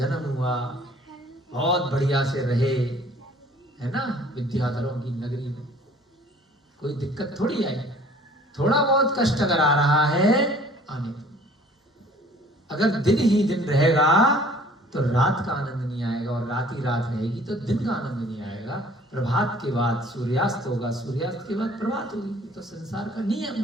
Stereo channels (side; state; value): both; normal; correlation 0.53